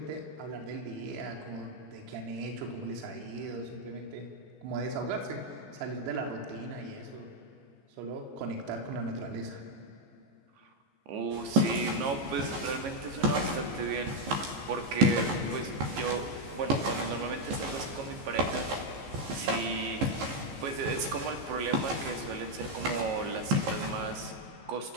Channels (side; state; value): left; late; 15 ms